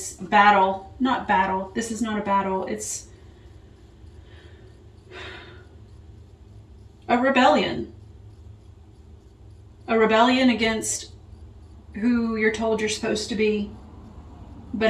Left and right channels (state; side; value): identical; both; correlation 1.00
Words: battle. Not battle. This is not a battle. It's a rebellion. A rebellion against who you're told you're supposed to be.